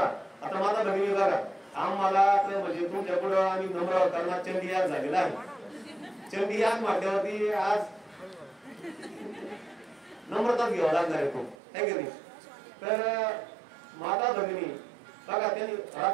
आता माझा बहिणी बघा, आम्हाला म्हणजे तुमच्या पुढे आम्ही नम्र करणार चंडी याग झालेला आहे. चंडी याग म्हटल्यावरती आज नम्रताच घ्यावा लागणार आहे खूप, है की नाही. तर माता भगिनी बघा, त्यांनी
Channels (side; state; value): left; drops out; at 11.6 s